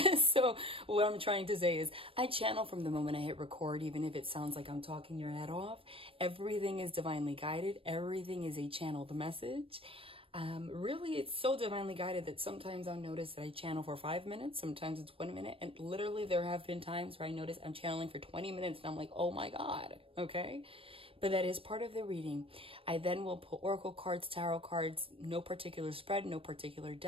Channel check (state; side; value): late; left; 0.27 ms